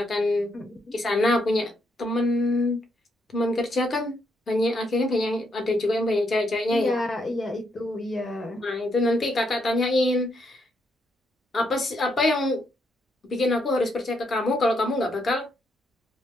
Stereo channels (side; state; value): both; normal; correlation 0.77